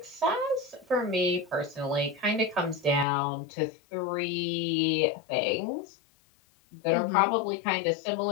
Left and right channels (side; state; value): right; drops out; at 3.1 s